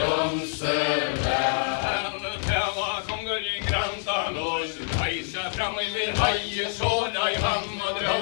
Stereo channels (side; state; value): right; silent; digital silence